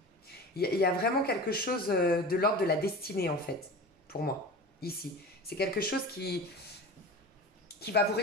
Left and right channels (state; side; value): normal; both; correlation 0.33